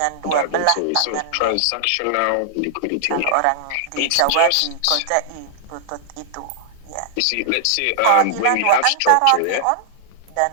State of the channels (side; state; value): both; different; correlation -0.01